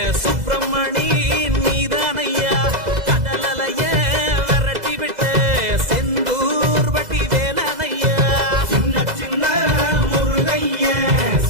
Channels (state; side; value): late; left; 2.0 ms